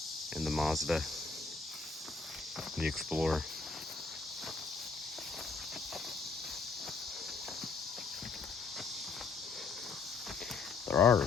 and the Mazda and the Explorer. There are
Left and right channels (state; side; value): quieter; right; 4.5 dB